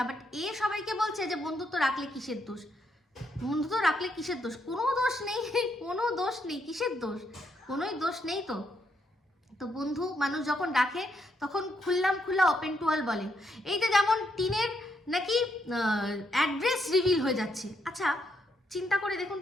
বাট সবাইকে বলছে যে বন্ধুত্ব রাখলে কিসের দোষ, বন্ধুত্ব রাখলে কিসের দোষ, কোনো দোষ নেই, কোনো দোষ নেই, কিসের দোষ, কোনোই দোষ নেই। তো বন্ধু মানুষ যখন ডাকে তখন খোলা ওপেন টু অল বলে। এই যে যেমন টিনের নাকি অ্যাড্রেস রিভিল হয়ে যাচ্ছে। আচ্ছা চিন্তা করে দেখুন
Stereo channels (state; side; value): normal; both; correlation 0.77